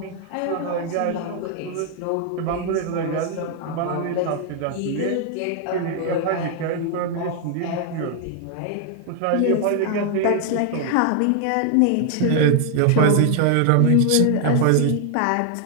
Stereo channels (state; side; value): different; both; correlation 0.00